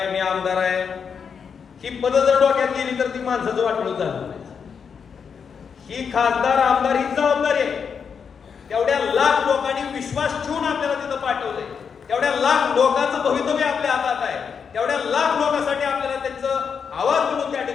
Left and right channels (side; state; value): right; quieter; 6.5 dB